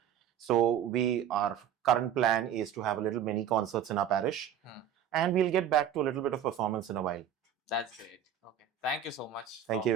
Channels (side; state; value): left; quieter; 9.1 dB